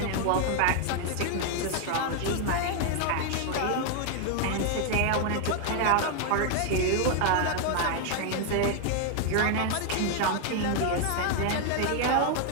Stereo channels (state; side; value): different; both; correlation 0.00